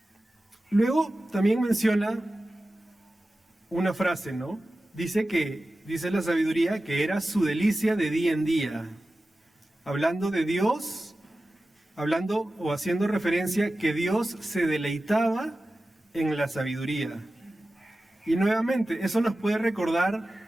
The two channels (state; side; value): normal; both; correlation 0.94